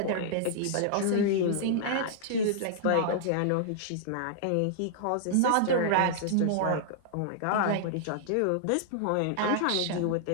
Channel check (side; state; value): both; different; correlation -0.01